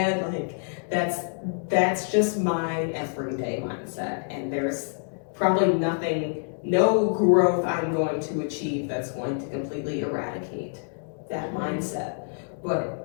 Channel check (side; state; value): right; silent; digital silence